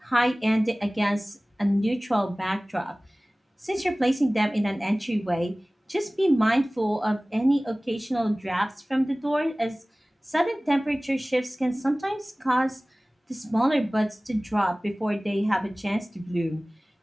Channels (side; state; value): both; normal; correlation 0.98